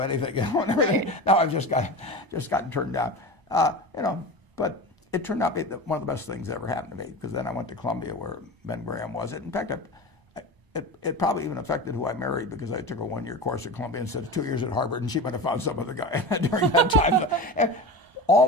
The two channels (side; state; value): left; late; 1.0 ms